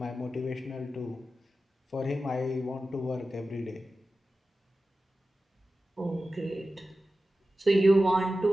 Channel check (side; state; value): both; normal; correlation 0.94